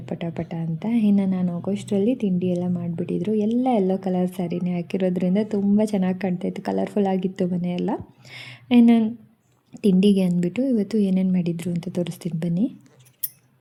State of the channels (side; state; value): both; identical; correlation 1.00